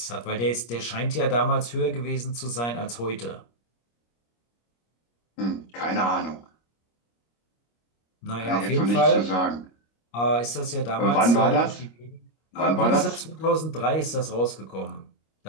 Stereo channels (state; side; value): late; right; 25 ms